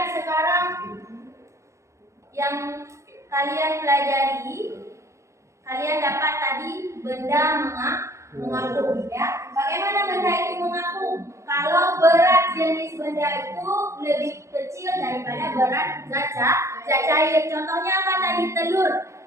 sekarang yang kalian pelajari. Kalian dapat tadi benda mengapung ya. Bagaimana benda itu mengapung? Kalau berat jenis benda itu lebih kecil daripada berat zat cair. Contohnya apa tadi? Telur.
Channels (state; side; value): late; left; 0.14 ms